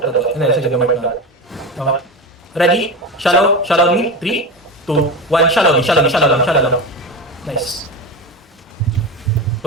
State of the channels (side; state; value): both; normal; correlation 0.23